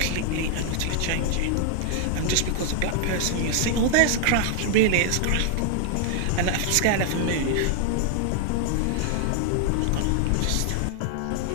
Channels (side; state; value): both; different; correlation 0.00